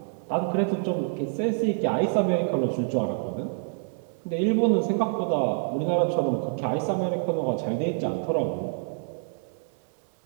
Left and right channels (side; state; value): left; silent; 60 dB below the other